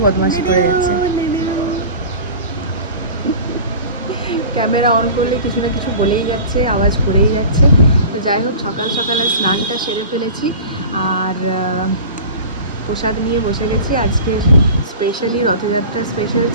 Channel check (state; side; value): inverted; both; correlation -0.38